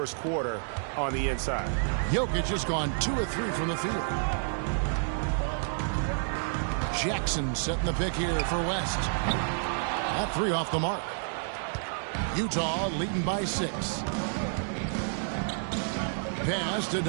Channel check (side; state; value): left; silent; digital silence